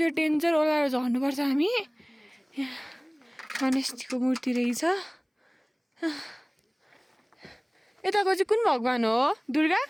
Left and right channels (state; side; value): identical; both; correlation 1.00